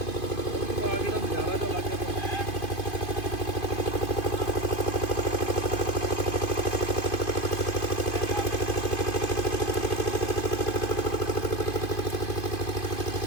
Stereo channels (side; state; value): right; late; 2.5 ms